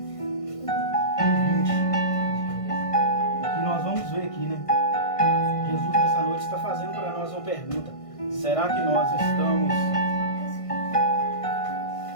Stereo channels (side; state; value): right; late; 1.5 ms